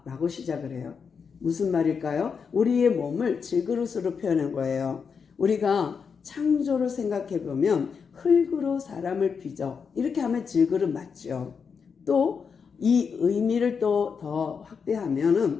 라고 시작을 해요. 무슨 말일까요? 우리의 몸을 질그릇으로 표현한 거예요. 우리가 창조를 생각해 보면 흙으로 사람을 빚어 이렇게 하면 질그릇 맞죠. 또 이 의미를 또 더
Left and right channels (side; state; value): right; quieter; 6.0 dB